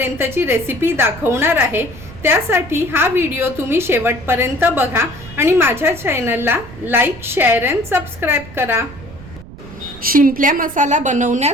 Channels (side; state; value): right; noise; rumble, 17 dB below the sound